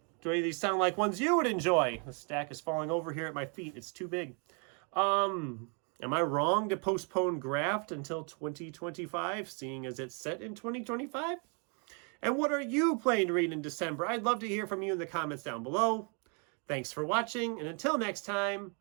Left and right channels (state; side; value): quieter; left; 37.1 dB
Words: any of these sound like ones you would enjoy? The stack is falling over here at my feet. It's too big. Am I wrong to postpone Graft until 2025, seeing as it's set in 2025? And what are you planning to read in December? I'd love to hear from you in the comments down below. Thanks for watching, and until next time,